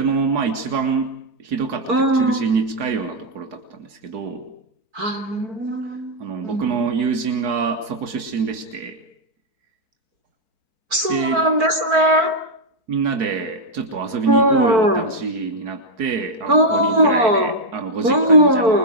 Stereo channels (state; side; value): late; left; 4.7 ms